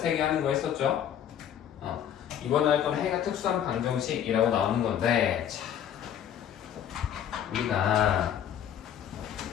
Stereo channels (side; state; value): right; quieter; 9.7 dB